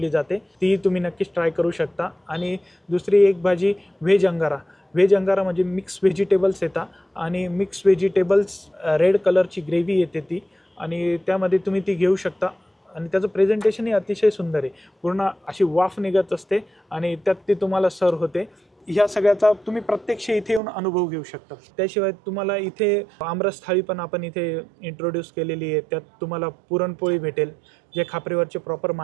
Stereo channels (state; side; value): drops out; left; at 20.6 s